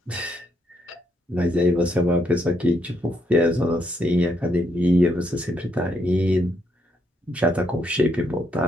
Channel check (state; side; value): normal; both; correlation 0.76